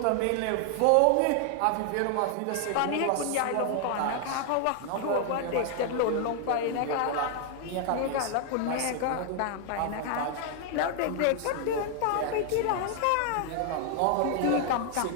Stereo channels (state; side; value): different; both; correlation 0.00